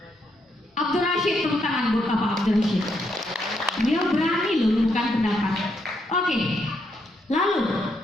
Abdul Rashid, tepuk tangan buat Bapak Abdul Rashid. Dia berani loh bukan pendapat. Oke. Lalu,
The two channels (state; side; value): normal; both; correlation 0.77